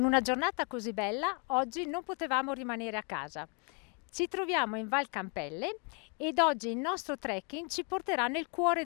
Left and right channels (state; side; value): quieter; right; 36.3 dB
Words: una giornata così bella, oggi non potevamo rimanere a casa. Ci troviamo in Val Campelle ed oggi il nostro trekking ci porterà nel cuore